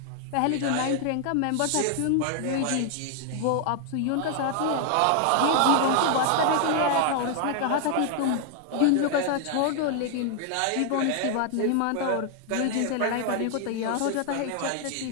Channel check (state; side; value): different; both; correlation 0.00